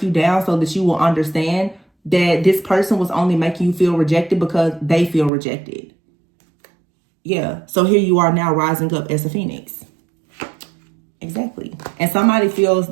you down so that you will understand that this person was only making you feel rejected because they feel rejected. Yeah. So here you are now rising up as a phoenix. Exactly. And somebody feels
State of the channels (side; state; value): left; drops out; at 5.3 s